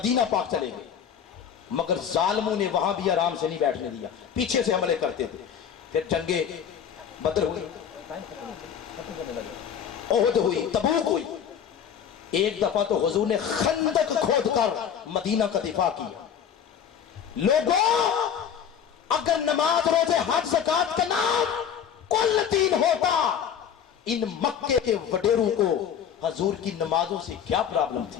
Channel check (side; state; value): right; quieter; 8.3 dB